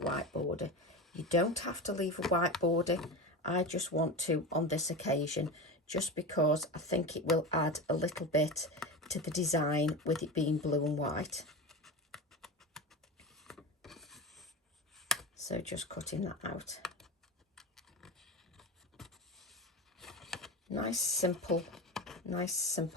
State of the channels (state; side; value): normal; both; correlation 0.25